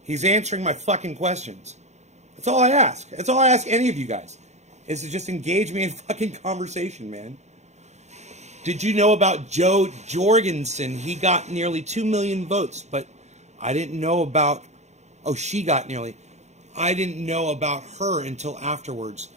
He's answering my fucking questions. That's all I ask. That's all I ask any of you guys. Is to just engage me in fucking conversation, man. Did you know about Joe Jorgensen? He got nearly 2 million votes, but I didn't know about... Oh, she got nearly... I didn't know about her until afterwards.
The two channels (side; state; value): left; late; 0.33 ms